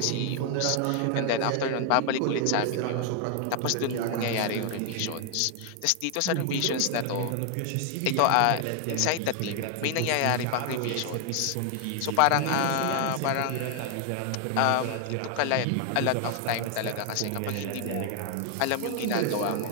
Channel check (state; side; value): different; both; correlation 0.00